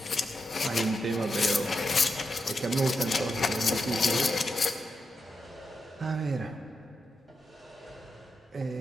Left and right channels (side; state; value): both; normal; correlation 0.86